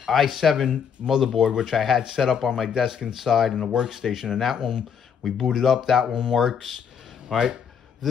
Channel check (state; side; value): quieter; right; 7.3 dB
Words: motherboard, which I had set up on my desk inside in the workstation, and that one we booted up. That one works. All right,